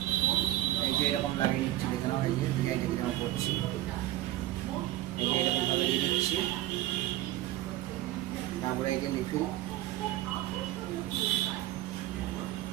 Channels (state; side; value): quieter; left; 15.3 dB